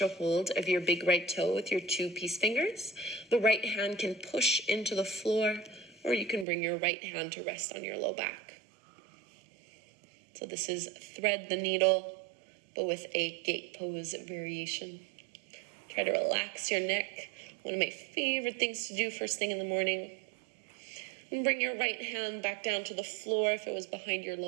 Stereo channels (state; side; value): drops out; left; at 6.5 s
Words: a hold of your big right toe with your 2 peace fingers. The right hand can push into the floor, or you can bring your right hand to rest on your low back. So this is thread the needle, but with a gate pose variation. Try to relax your neck. One of my favorite things to do first thing in the morning. And bring your right hand back down to the floor if it was behind your